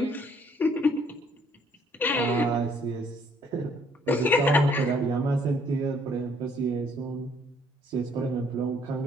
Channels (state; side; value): normal; both; correlation 0.63